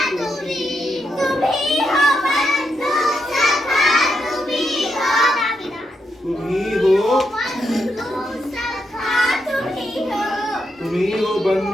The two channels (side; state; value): both; normal; correlation 0.82